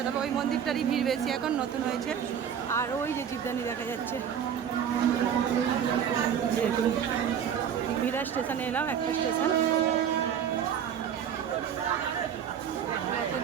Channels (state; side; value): quieter; left; 8.5 dB